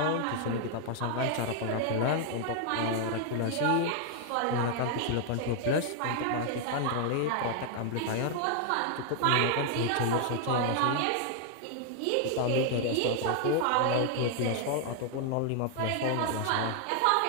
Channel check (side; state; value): both; different; correlation 0.00